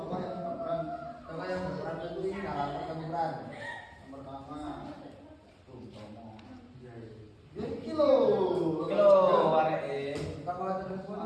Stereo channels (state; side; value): identical; both; correlation 1.00